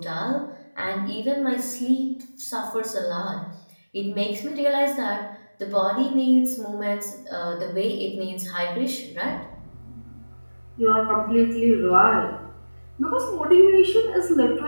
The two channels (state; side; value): inverted; both; correlation -1.00